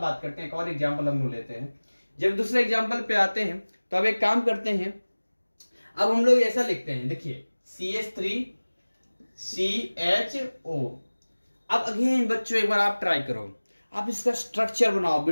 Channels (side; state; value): both; inverted; correlation -1.00